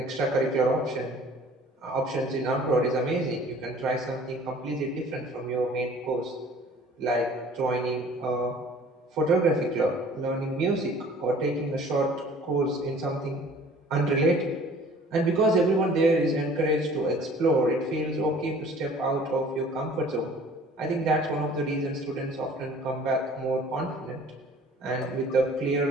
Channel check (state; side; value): normal; both; correlation 0.50